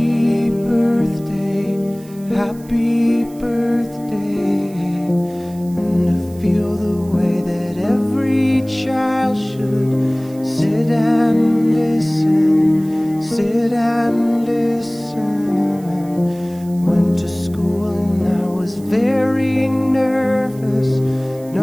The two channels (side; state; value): right; noise; hiss, 25 dB below the sound